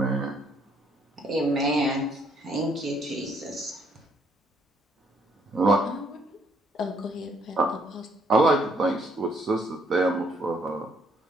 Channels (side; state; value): both; normal; correlation 0.67